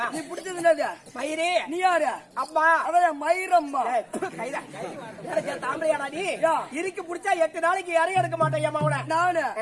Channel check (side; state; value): both; identical; correlation 1.00